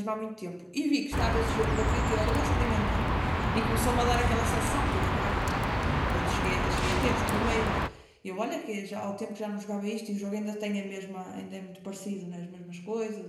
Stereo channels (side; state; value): both; identical; correlation 1.00